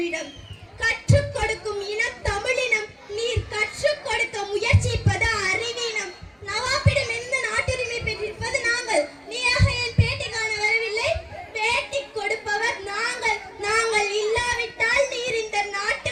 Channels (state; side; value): identical; both; correlation 1.00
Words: கற்றுக் கொடுக்கும் இனம் தமிழினம். நீர் கற்றுக் கொடுக்க முயற்சிப்பது அறிவீனம். நவாபிடம் எந்த நாட்டுரிமை பெற்றிருப்பது நாங்கள். நீயாக என் பேட்டி காண வரவில்லை. பேட்டி கொடுப்பவர் நாங்கள். நாங்கள் இல்லாவிட்டால் நீர் இந்த